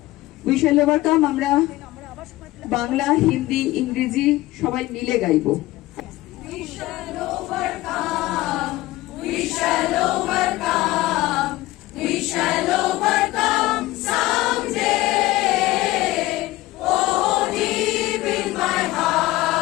We shall overcome আমরা বাংলা, হিন্দি, ইংরেজি সবাই মিলে গাইবো। We shall overcome. We shall overcome. We shall overcome someday. Oh, deep in my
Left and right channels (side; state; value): right; quieter; 17.8 dB